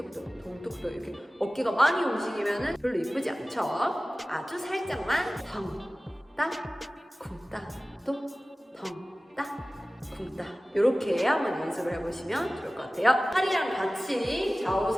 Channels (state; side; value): normal; both; correlation 0.97